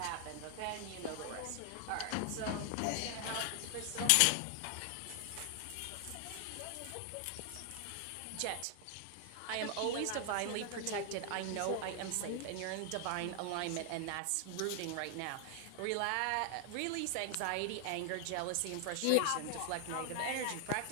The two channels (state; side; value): different; both; correlation 0.00